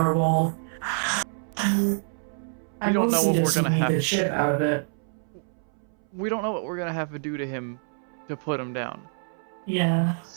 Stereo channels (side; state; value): left; silent; 60 dB below the other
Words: We don't know what we're gonna have. The shit out of it. We don't know what we're gonna have to do to him to put him down. Yeah.